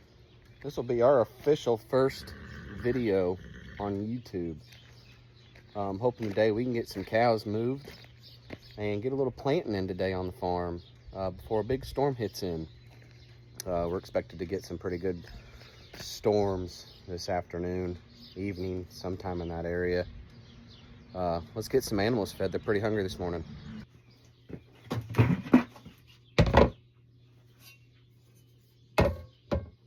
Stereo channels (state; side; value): identical; both; correlation 1.00